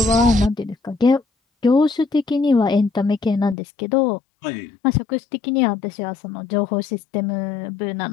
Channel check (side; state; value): right; drops out; at 3.6 s